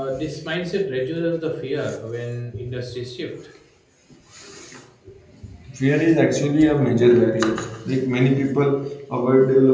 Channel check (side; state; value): both; identical; correlation 1.00